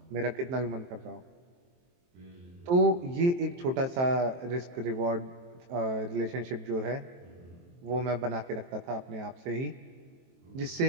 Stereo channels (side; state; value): left; late; 23 ms